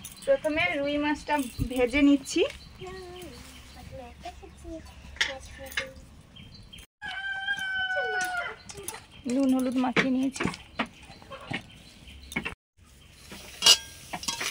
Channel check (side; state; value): both; identical; correlation 1.00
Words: প্রথমে রুই মাছটা ভেজে নিচ্ছি। নুন হলুদ মাখিয়ে নিয়েছি।